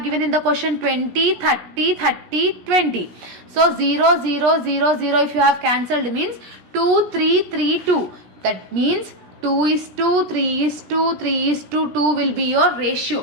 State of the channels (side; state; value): left; late; 17 ms